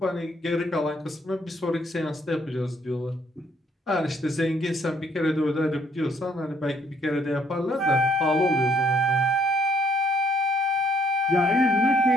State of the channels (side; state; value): both; normal; correlation 0.67